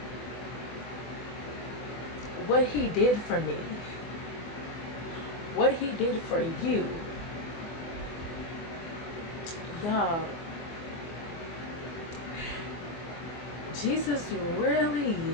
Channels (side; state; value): right; late; 24 ms